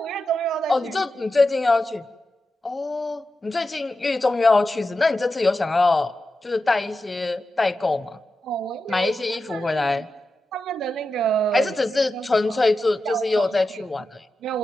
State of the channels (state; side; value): normal; both; correlation 0.91